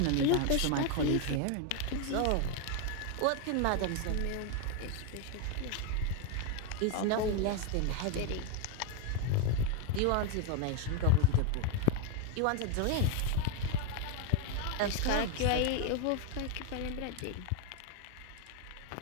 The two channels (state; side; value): different; both; correlation 0.01